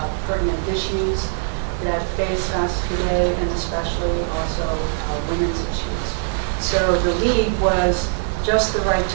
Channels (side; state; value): left; silent; digital silence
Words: pertinent issues that face us today, and especially also women's issues. So the League was just the right